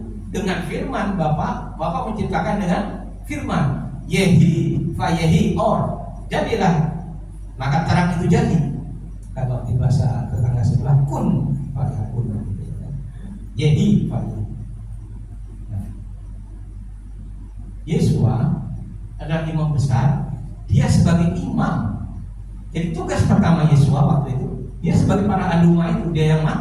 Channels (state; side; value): identical; both; correlation 1.00